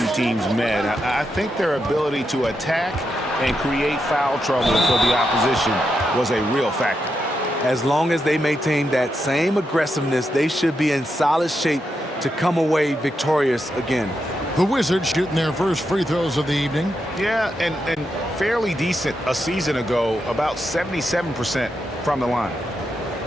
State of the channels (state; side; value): normal; both; correlation 0.84